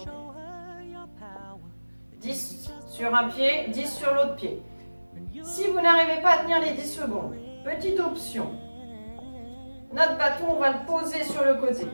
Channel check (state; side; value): inverted; both; correlation -1.00